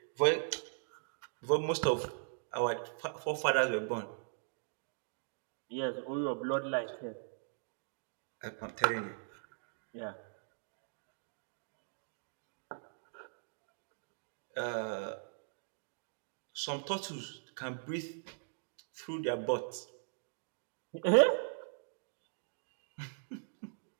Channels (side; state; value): left; silent; digital silence